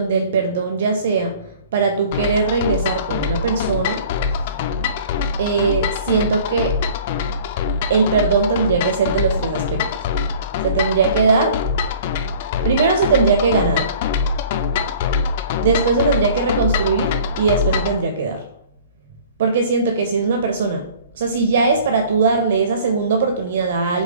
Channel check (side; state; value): both; inverted; correlation -0.48